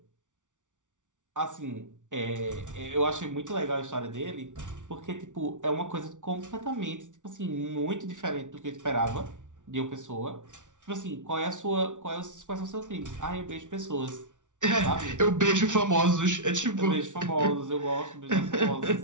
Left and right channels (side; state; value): left; late; 0.87 ms